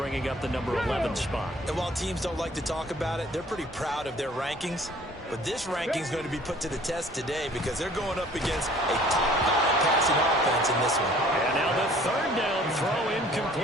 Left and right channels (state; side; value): normal; both; correlation 0.53